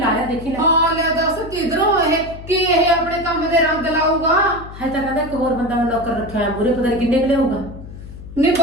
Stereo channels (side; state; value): left; noise; hum, 14 dB below the sound